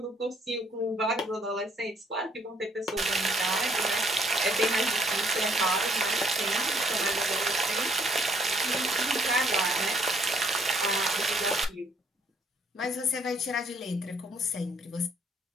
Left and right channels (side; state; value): both; normal; correlation 0.65